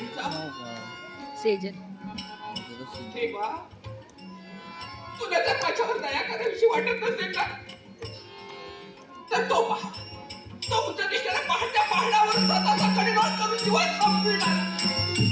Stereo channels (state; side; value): identical; both; correlation 1.00